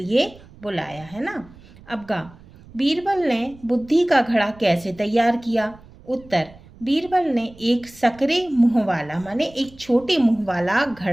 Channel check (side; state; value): right; noise; rumble, 23 dB below the sound